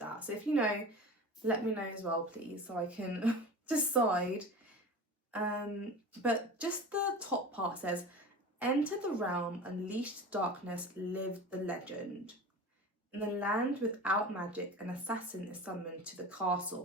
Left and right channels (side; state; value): both; normal; correlation 0.34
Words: So if you know, let me know as well, please, so I can decide. But just the top part says, enter the realm, unleashed darkness, lived the legend. In the land without magic, an assassin is summoned to the